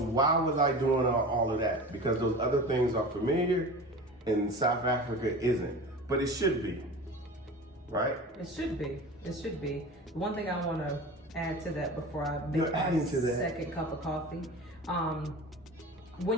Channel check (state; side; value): normal; both; correlation 0.34